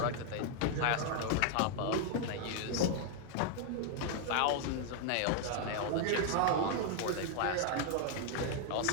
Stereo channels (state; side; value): different; both; correlation 0.00